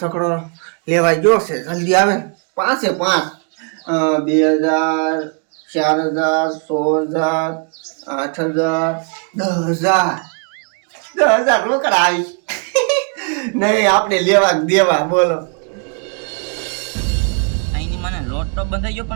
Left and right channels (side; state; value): left; quieter; 37.9 dB